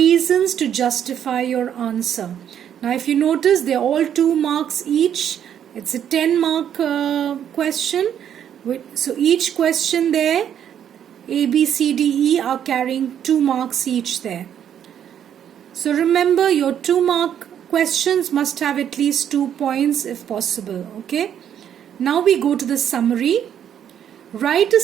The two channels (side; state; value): left; quieter; 9.4 dB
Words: to justify your answer. Now if you notice, they're all 2 marks each. It's a 10-mark question. So each question there, A, B, C, D, E are carrying 2 marks each there. So remember, your 2-mark questions must have at least 2 points if possible. Okay. Now we go to the summary. Write a